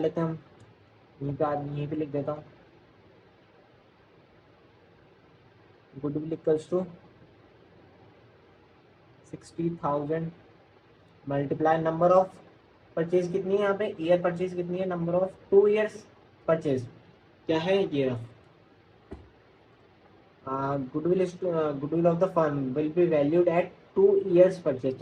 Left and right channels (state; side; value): identical; both; correlation 1.00